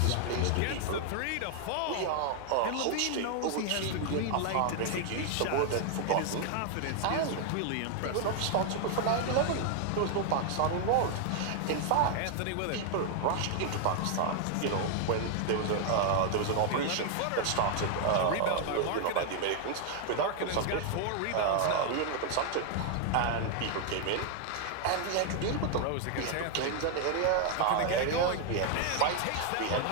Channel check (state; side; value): different; both; correlation 0.00